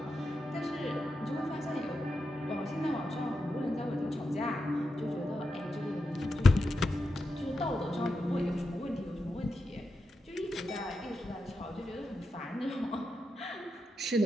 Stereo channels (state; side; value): normal; both; correlation 0.87